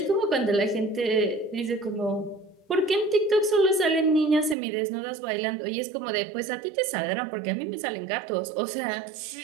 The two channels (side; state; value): left; drops out; at 4.5 s